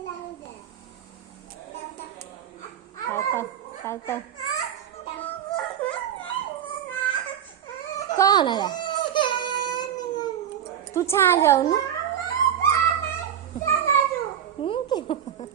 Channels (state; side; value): quieter; left; 9.4 dB